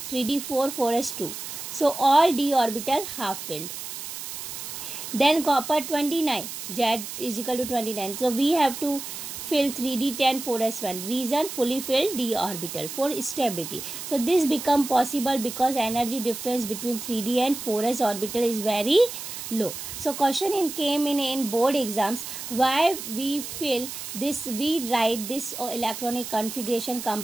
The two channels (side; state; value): right; noise; hiss, 8 dB below the sound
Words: 3d4 4s2. So all d orbital half filled. Then copper 29, Z is equal to 29. So we have to fill 3d10 4s1. Reason, fully filled d orbital for stability. So this become possible because energy difference between 3d and 4s orbital is very low. So question came in board exams, why we fill this, we write this electronic configuration